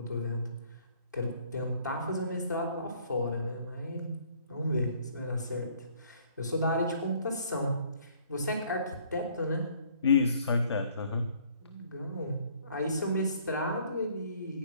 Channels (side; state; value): both; inverted; correlation -0.60